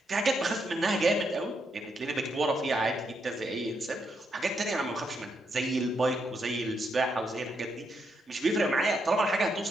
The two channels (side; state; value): both; normal; correlation 0.79